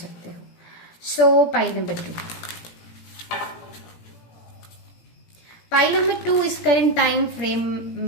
हो। सो पाइल नंबर 2, पाइल नंबर 2, इस करंट टाइम फ्रेम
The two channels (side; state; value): right; late; 17 ms